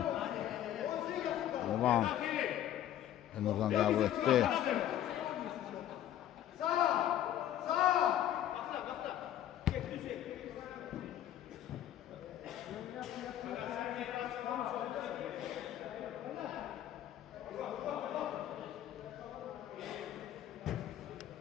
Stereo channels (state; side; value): quieter; right; 11.7 dB